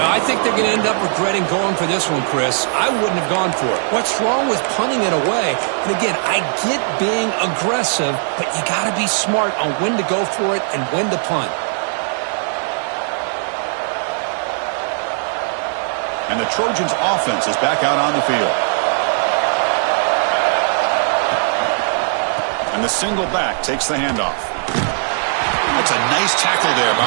think they're going to end up regretting going for this one, Chris. I wouldn't have gone for it. What's wrong with punting it away? And again, I get being aggressive, but you got to be smart on when to go for it and when to punt. And the Trojans' offense is back out on the field. And the single back takes the handoff. That's a nice tackle there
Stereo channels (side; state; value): left; silent; 66 dB below the other